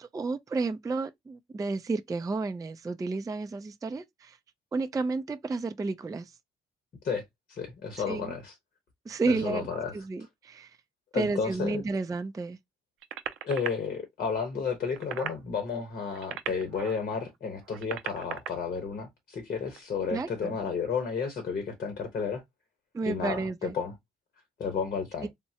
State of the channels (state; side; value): normal; both; correlation 0.55